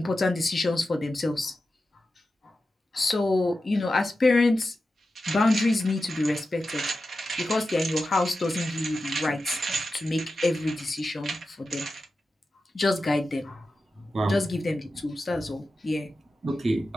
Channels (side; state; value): both; normal; correlation 0.92